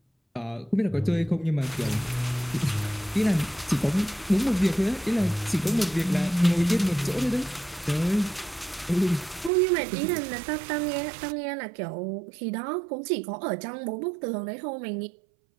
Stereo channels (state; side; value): drops out; left; at 9.5 s